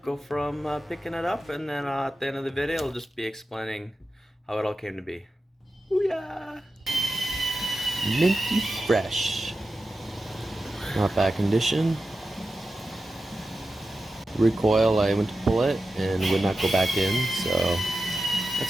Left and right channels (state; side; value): normal; both; correlation 0.92